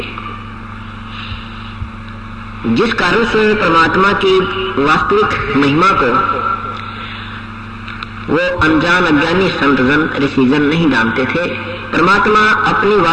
जिस कारण से परमात्मा की वास्तविक महिमा को वो अनजान अज्ञानी संतजन ऋषिजन नहीं जानते थे। परमात्मा अपनी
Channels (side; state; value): both; identical; correlation 1.00